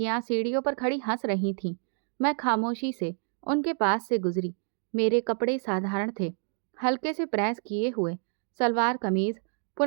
सीढ़ियों पर खड़ी हंस रही थीं। मैं खामोशी से उनके पास से गुजरी। मेरे कपड़े साधारण थे, हल्के से प्रेस किए हुए सलवार कमीज,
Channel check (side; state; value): left; silent; 59 dB below the other